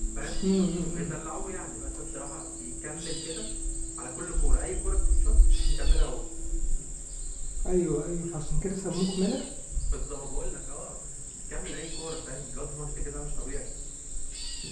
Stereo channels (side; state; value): both; identical; correlation 1.00